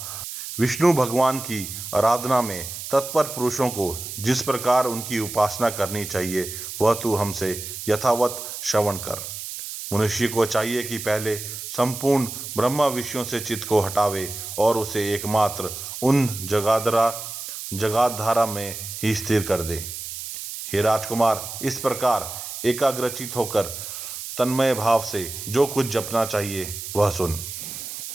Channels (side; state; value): right; noise; hiss, 8 dB below the sound